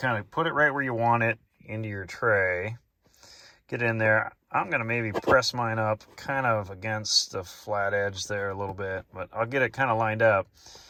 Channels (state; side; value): identical; both; correlation 1.00